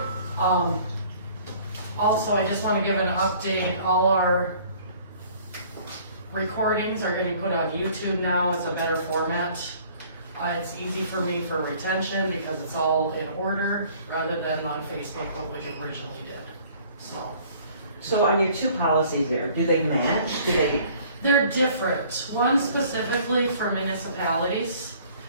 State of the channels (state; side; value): inverted; both; correlation -0.54